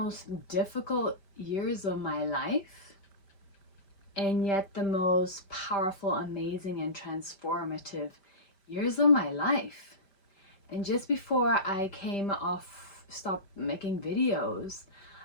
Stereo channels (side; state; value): right; late; 5.1 ms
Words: difficult years of my life, and yet the most powerful, amazing, and transformative years of my life. And just before I stopped making videos,